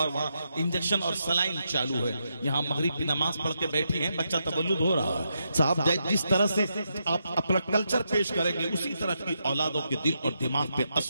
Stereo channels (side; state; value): both; inverted; correlation -0.82